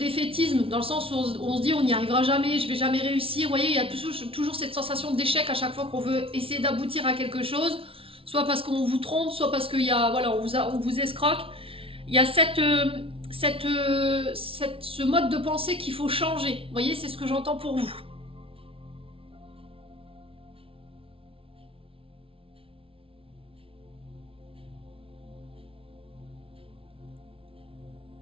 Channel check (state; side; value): late; left; 0.26 ms